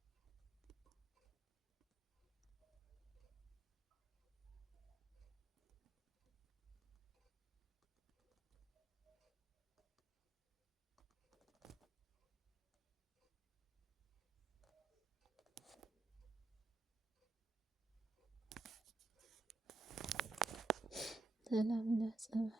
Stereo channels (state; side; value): quieter; left; 3.3 dB